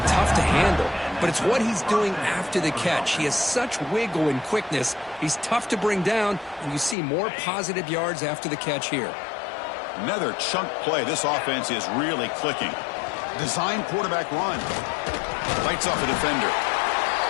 tough to handle, but it's what he's doing after the catch. He has such wiggle and quickness. He's tough to bring down, and you see more positive yards after the catch here. Another chunk play. This offense is really clicking. Design quarterback run. Lights off a defender.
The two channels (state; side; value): drops out; right; at 7.0 s